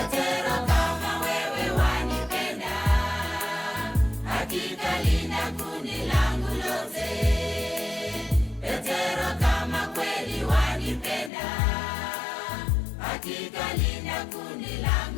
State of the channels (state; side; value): drops out; right; at 11.3 s